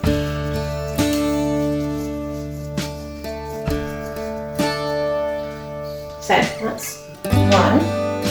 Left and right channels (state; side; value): identical; both; correlation 1.00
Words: So, that's one.